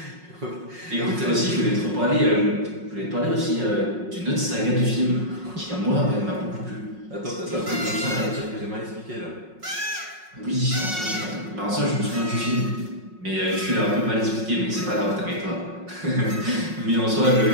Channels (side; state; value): left; late; 5.5 ms